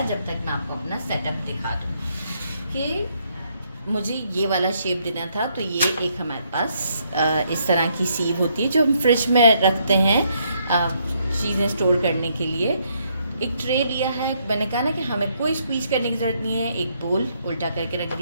जब तक मैं आपको अपना सेटअप दिखा दूँ कि मुझे ये वाला शेप देना था। तो ये एक हमारे पास इस तरह की सीव होती है जो हम फ्रिज में रखते हैं चीज़ें स्टोर करने के लिए। एक ट्रे लिया है, मैंने कहा ना कि हमें कोई स्क्वीज करने की ज़रूरत नहीं है। एक बोल उल्टा करके रख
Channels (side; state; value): both; inverted; correlation -0.73